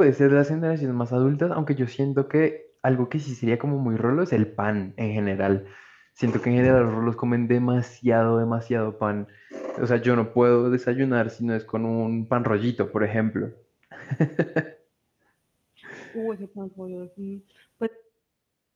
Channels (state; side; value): identical; both; correlation 1.00